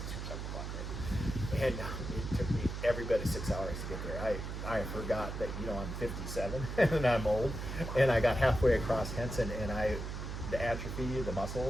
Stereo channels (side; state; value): right; noise; hum, 5 dB below the sound